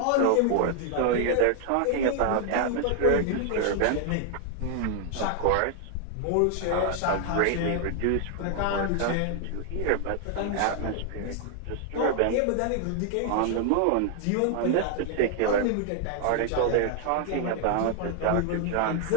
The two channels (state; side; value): different; both; correlation 0.00